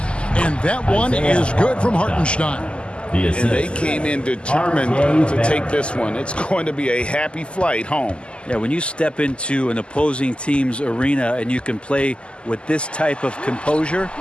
and that one is good from Hartenstein. And they came in determined to take this one. It's going to be a happy flight home. Yeah, when you step into an opposing team's arena and you can play with this type of composure,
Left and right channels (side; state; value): right; late; 0.052 ms